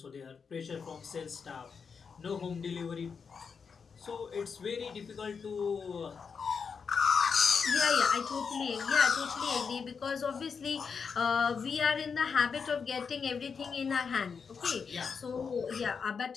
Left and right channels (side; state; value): right; quieter; 5.8 dB